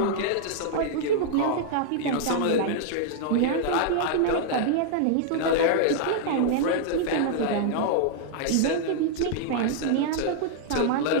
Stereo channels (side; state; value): both; different; correlation -0.01